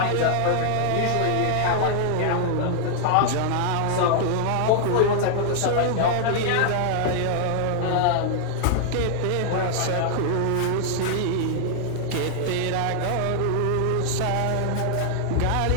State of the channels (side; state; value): both; different; correlation 0.00